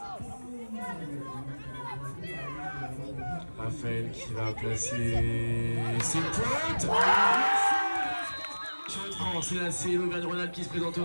Raphaël qui va placer ses pointes. C'est là, c'est l'Auvergne-Rhône-Alpes qui se présente au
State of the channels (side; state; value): both; inverted; correlation -1.00